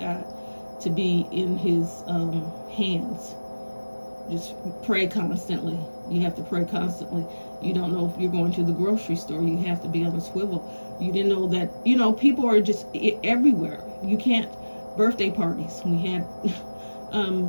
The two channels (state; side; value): inverted; both; correlation -1.00